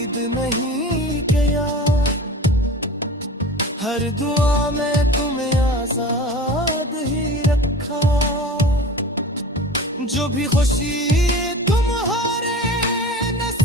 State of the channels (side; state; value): both; normal; correlation 0.36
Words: नहीं किया, हर दुआ में तुम्हें आजाद ही रखा। जो भी खुशी तुम्हारे